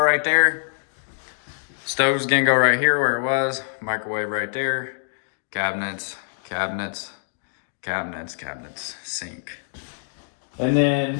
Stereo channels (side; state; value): right; silent; digital silence